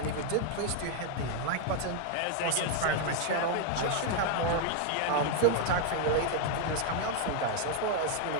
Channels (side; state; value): both; different; correlation 0.00